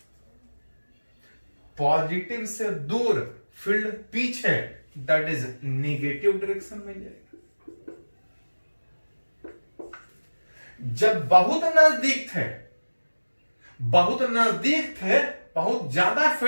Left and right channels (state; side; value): inverted; both; correlation -1.00